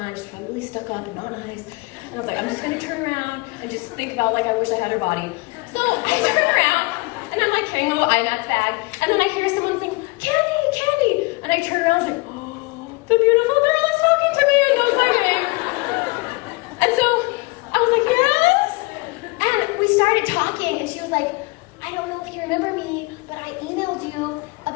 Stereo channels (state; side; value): quieter; right; 26.0 dB